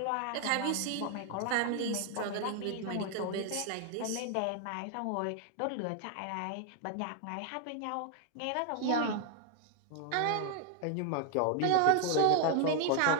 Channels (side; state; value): both; different; correlation 0.00